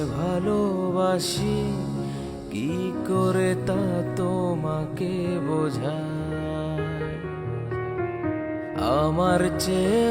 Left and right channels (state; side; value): identical; both; correlation 1.00